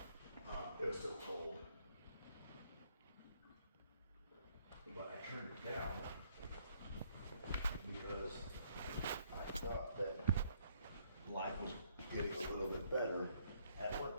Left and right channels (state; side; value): inverted; both; correlation -0.68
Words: It was still cold. But I turned it down because I thought that life was getting a little bit better at